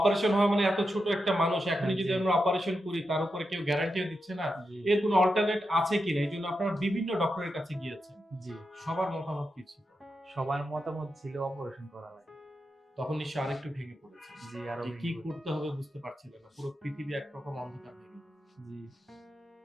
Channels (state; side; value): normal; both; correlation 0.88